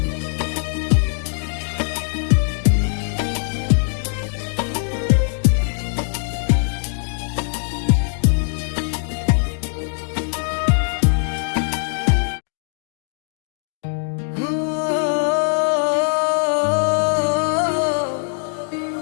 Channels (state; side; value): silent; right; 65 dB below the other